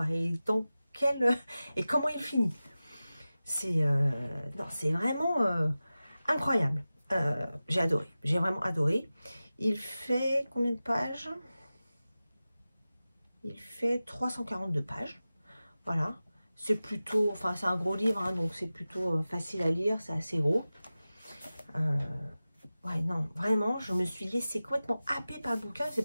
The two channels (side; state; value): both; inverted; correlation -0.96